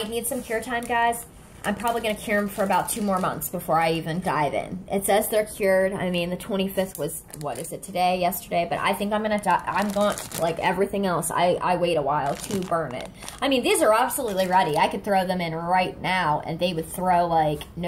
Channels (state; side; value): identical; both; correlation 1.00